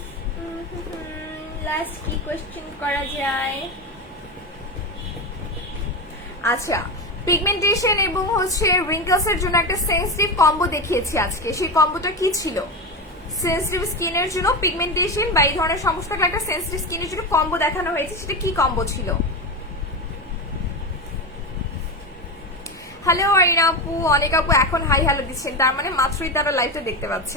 লাস্ট কি কোয়েশ্চেন করা যায়? আচ্ছা, পিগমেন্টেশন এবং হচ্ছে রিঙ্কলস এর জন্য একটা সেন্সিটিভ কম্বো দেখিয়েছি আজকে, সেই কম্বোটা কি ছিল? সেন্সিটিভ স্কিনের জন্য পিগমেন্টেশন বা এই ধরনের সমস্যা থাকলে একটা সেন্সিটিভ স্কিনের জন্য কম্বো দেখানো হয়েছে, সেটা কি কম্বো ছিল? হ্যালো আরিনা আপু, অনেক আপু এখন হাই হ্যালো দিচ্ছেন, তার মানে মাত্রই তারা লাইভটা দেখতে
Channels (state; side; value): normal; both; correlation 0.18